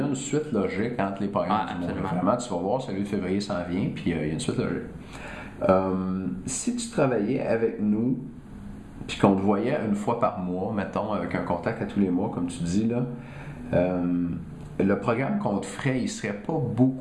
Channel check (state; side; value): identical; both; correlation 1.00